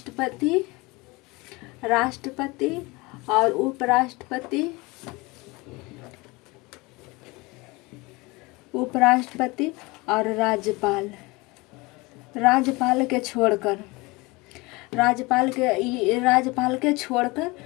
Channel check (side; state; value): right; quieter; 24.1 dB